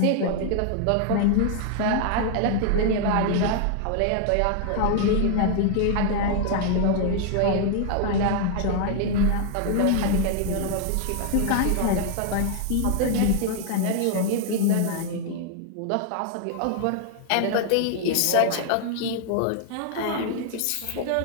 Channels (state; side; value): different; both; correlation 0.00